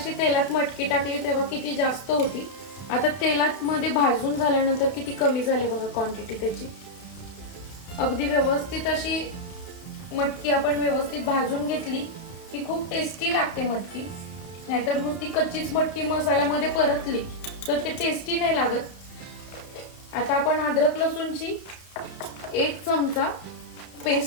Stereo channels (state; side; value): late; right; 31 ms